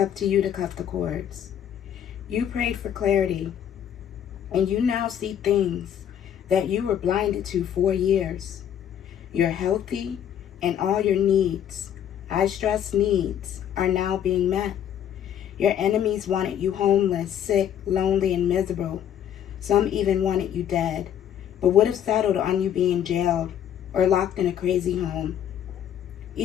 to you to cut the cords. You prayed for clarity, and you now see things that you were blinded to for years. You're healthy, and all your needs, I stress needs, are now being met. Your enemies wanted you homeless, sick, lonely, and miserable. Some even wanted you dead, but would have settled on you being jailed or locked in a crazy home.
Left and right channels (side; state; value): right; quieter; 9.7 dB